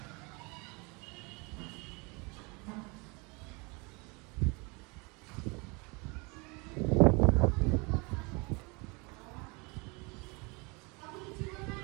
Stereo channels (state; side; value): quieter; left; 28.9 dB